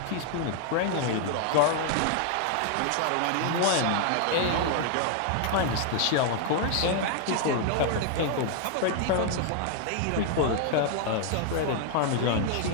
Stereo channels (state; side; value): different; both; correlation 0.00